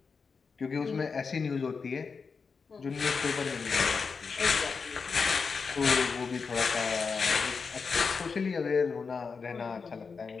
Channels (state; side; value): quieter; right; 5.2 dB